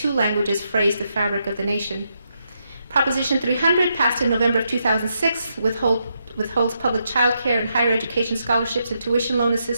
languages frays the fabric of the nation. Proposition 300, passed in November of 2006, withholds public child care and higher education scholarships and tuition loan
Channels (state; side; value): inverted; both; correlation -0.81